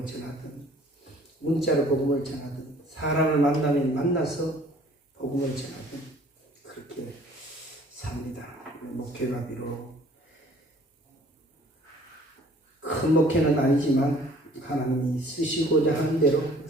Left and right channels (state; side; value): normal; both; correlation 0.54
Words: 전하든, 문자로 복음을 전하든, 사람을 만나면 만나서 복음을 전하든 그렇게 삽니다. 목회가 비록 큰 목회는 아니지만 하나님이 쓰시고자 하는 대로